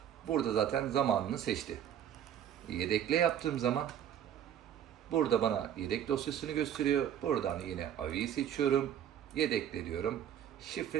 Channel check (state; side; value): quieter; left; 9.9 dB